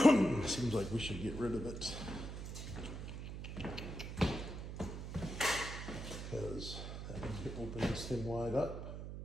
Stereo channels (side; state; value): right; noise; hum, 7 dB below the sound